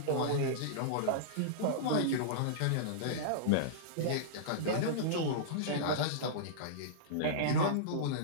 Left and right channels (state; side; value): different; both; correlation -0.03